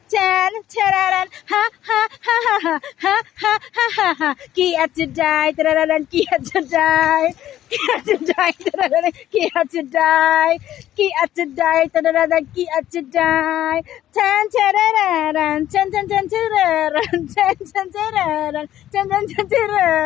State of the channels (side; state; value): right; quieter; 12.5 dB